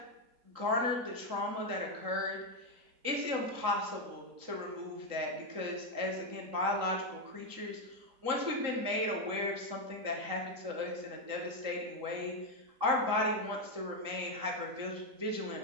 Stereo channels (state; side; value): late; left; 3.9 ms